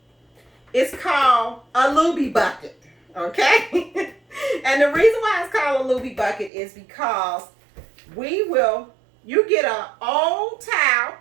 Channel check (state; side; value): drops out; left; at 6.5 s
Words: is called a looby bucket, okay? And the reason why it's called a looby bucket is because you get an old towel.